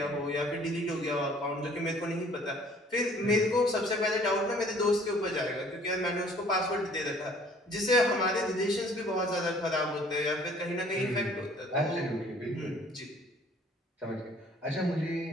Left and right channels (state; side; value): normal; both; correlation 0.56